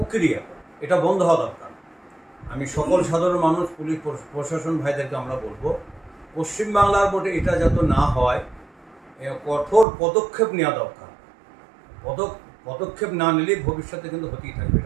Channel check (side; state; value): left; drops out; at 9.9 s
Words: এটা বন্ধ হওয়া দরকার। আমি সকল সাধারণ মানুষ, পুলিশ প্রশাসন ভাইদেরকে আমরা বলবো, পশ্চিমবাংলার মধ্যে এটা যাতে না হয় কঠোর পদক্ষেপ নেওয়া দরকার। পদক্ষেপ না নিলে ভবিষ্যতে কিন্তু হতেই থাকবে,